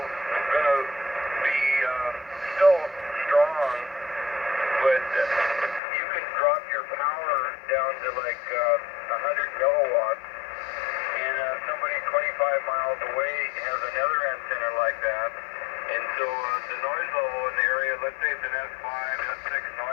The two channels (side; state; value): right; drops out; at 5.8 s